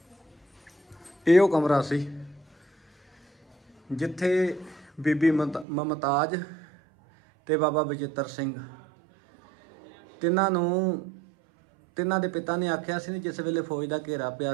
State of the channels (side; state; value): left; drops out; at 5.7 s